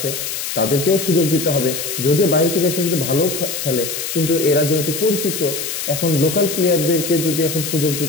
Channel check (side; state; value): left; noise; hiss, 5 dB below the sound